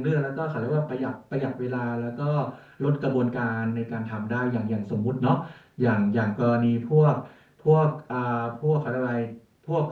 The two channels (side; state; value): both; identical; correlation 1.00